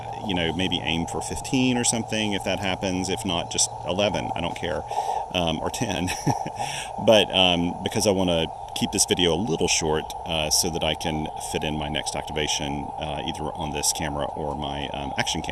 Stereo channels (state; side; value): identical; both; correlation 1.00